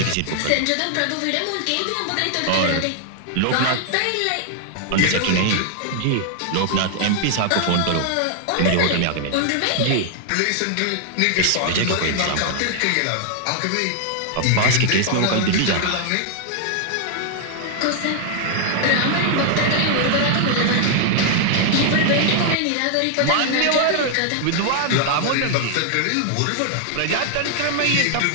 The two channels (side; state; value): both; different; correlation 0.00